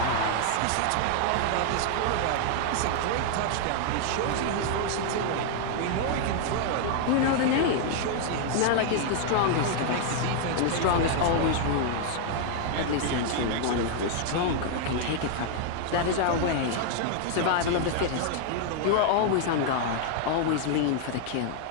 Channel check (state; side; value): different; both; correlation 0.00